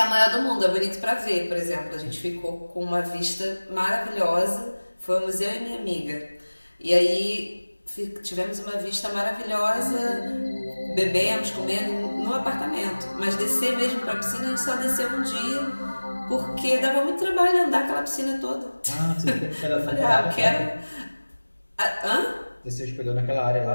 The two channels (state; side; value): inverted; both; correlation -1.00